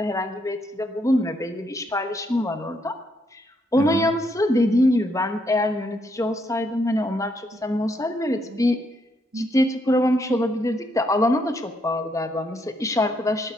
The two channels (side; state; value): both; normal; correlation 0.75